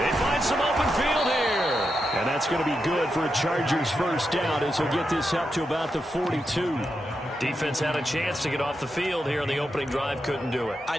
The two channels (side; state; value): both; normal; correlation 0.86